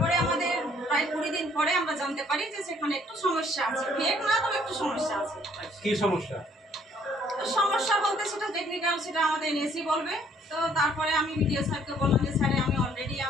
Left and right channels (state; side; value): normal; both; correlation 0.62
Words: আমাদের প্রায় 20 দিন পরে আমরা জানতে পারি যে সেখানে একটু সমস্যা আছে। ফেক না, তবে একটু সমস্যা আছে। কি সমস্যা? সমস্যা বলতে সেটা টেকনিক্যাল, সেটা আমাদের এনএসই বলবে। তো তারপরে আমি ভিডিও স্যারকে বললাম যে স্যার, আমি অলরেডি